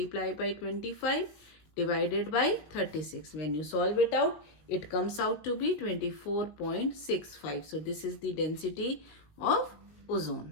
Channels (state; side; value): late; right; 19 ms